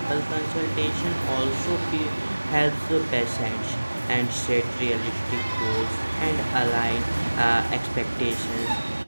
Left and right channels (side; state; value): both; inverted; correlation -1.00